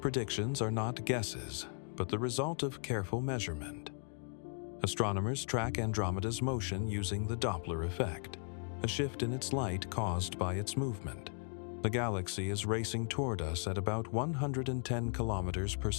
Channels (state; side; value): silent; right; 53 dB below the other